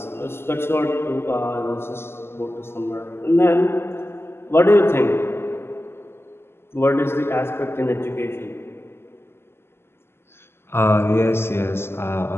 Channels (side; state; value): right; late; 0.12 ms